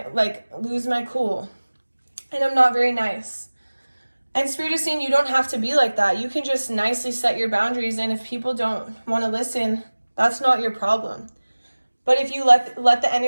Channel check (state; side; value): inverted; both; correlation -1.00